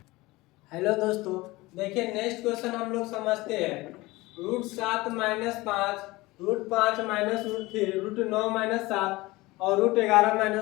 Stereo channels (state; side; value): quieter; right; 20.8 dB